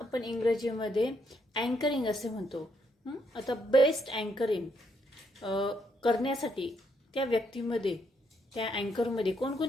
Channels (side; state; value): both; normal; correlation 0.75